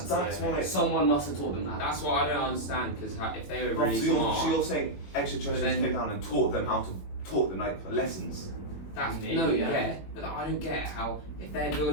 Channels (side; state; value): right; late; 21 ms